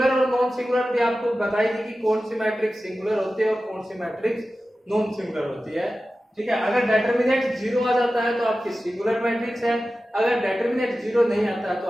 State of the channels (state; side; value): normal; both; correlation 0.94